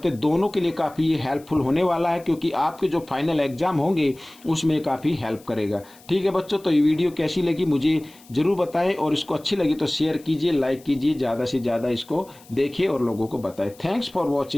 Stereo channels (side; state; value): left; noise; hiss, 25 dB below the sound